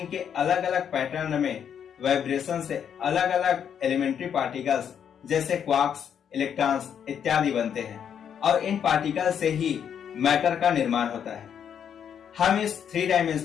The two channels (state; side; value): quieter; right; 8.3 dB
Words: के अलग अलग पैटर्न में वाइब्रेशन से अलग अलग एलिमेंट्री पार्टिकल्स जैसे क्वार्क्स, इलेक्ट्रॉन्स इत्यादि बनते हैं और इन पार्टिकल से ही मैटर का निर्माण होता है। हम इस 3